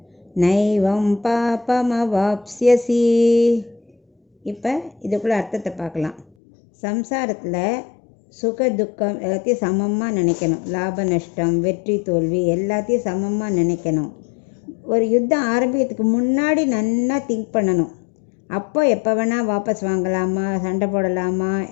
நைவம் பாபமவாப்ஸ்யசி. இப்போ இதுக்குள்ள அர்த்தத்தை பார்க்கலாம். சம்சாரத்தில் சுக துக்கம் எல்லாத்தையும் சமமாக நினைக்கணும். லாப நஷ்டம், வெற்றி தோல்வி எல்லாத்தையும் சமமாக நினைக்கணும். ஒரு யுத்தம் ஆரம்பிக்கிறதுக்கு முன்னாடி நல்லா திங்க் பண்ணணும். அப்போ எப்போ வேணால் வாபஸ் வாங்கலாமா, சண்டை போடலாமா,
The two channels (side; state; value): right; drops out; at 6.2 s